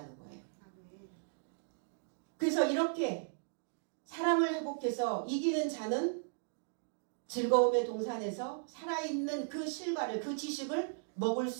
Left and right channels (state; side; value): silent; left; digital silence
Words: 거예요. 그래서 이렇게 사랑을 회복해서 이기는 자는 즐거움의 동산에서 살아있는 그 실과를, 그 지식을 먹을